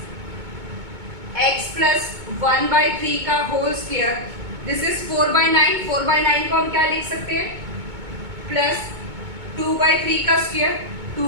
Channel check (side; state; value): left; late; 2.2 ms